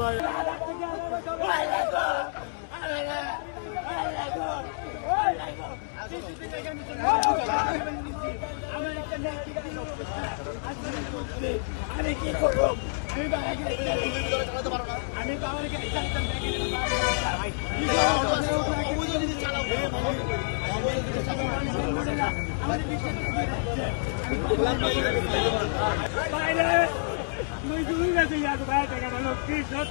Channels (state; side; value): silent; right; digital silence